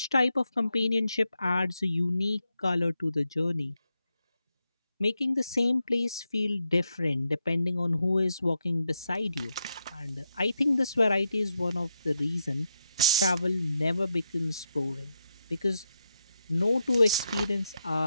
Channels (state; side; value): inverted; both; correlation -0.84